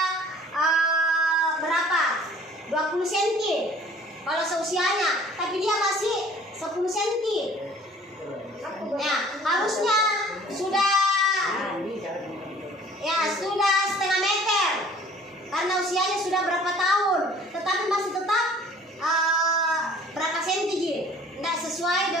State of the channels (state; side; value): normal; both; correlation 0.51